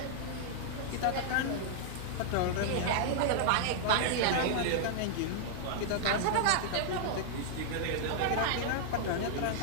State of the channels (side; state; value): both; different; correlation -0.01